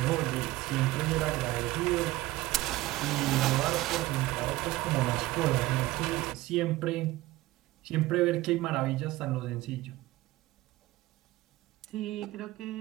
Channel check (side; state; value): left; quieter; 18.0 dB